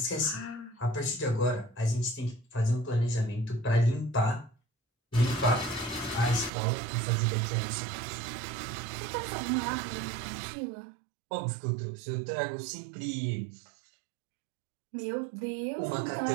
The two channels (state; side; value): drops out; left; at 6.5 s